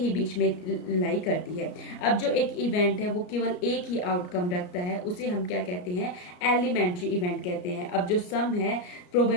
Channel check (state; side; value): late; right; 33 ms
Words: बीच में लाई करती है। अब जो एक इवेंट है वो केवल एक ही आउटकम रखता है, उसे हम क्या कहते हैं, एलिमेंट्री इवेंट कहते हैं। अब जो सम है